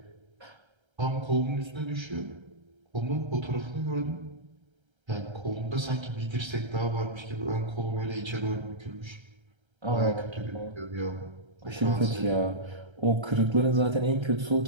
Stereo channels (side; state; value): left; late; 1.3 ms